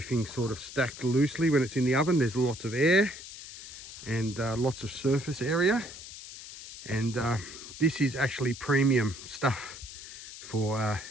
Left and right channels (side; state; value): left; noise; hiss, 13 dB below the sound